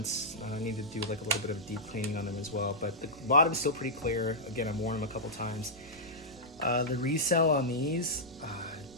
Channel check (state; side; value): normal; both; correlation -0.10